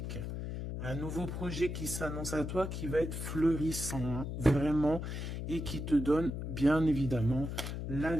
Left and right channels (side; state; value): left; noise; hum, 5 dB below the sound